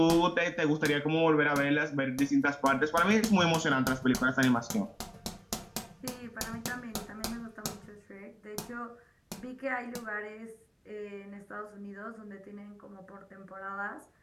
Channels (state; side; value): identical; both; correlation 1.00